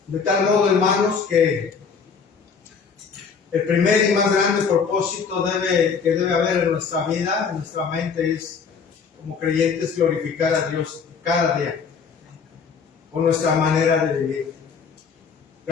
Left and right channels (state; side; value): quieter; right; 5.8 dB